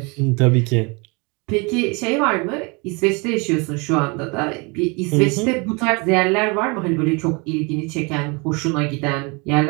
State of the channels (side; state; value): left; quieter; 29.7 dB